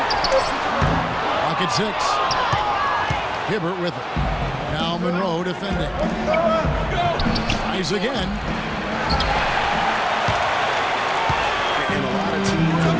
Pocket six. Hibbert with it. Now Monroe defending. Tries again. And a lot of teams are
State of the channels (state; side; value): identical; both; correlation 1.00